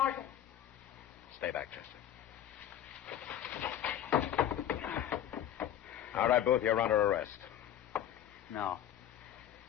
Stay back, Chester. All right, Booth, you're under arrest. No.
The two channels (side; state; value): right; quieter; 10.9 dB